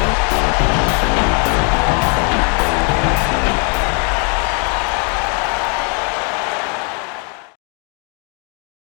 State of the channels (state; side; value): quieter; right; 37.9 dB